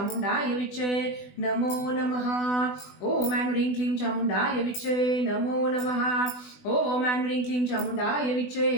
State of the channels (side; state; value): right; late; 20 ms